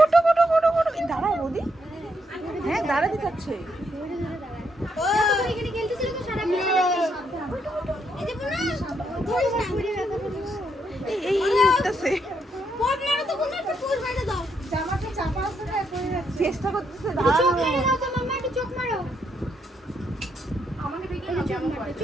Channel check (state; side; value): normal; both; correlation 0.77